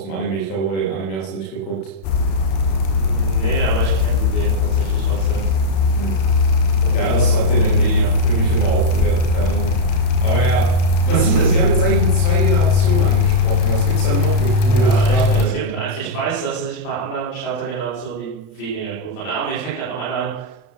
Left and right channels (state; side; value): late; right; 32 ms